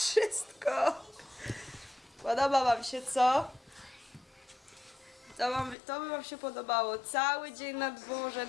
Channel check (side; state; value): right; drops out; at 5.8 s